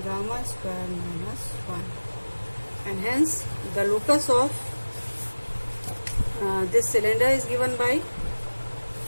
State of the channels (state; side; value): inverted; both; correlation -1.00